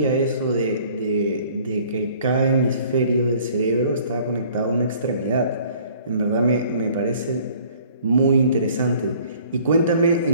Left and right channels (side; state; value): both; inverted; correlation -0.55